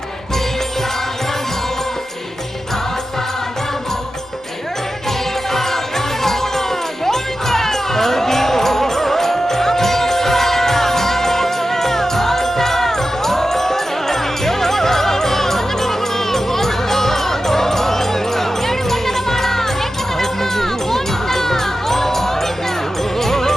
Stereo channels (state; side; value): normal; both; correlation 0.92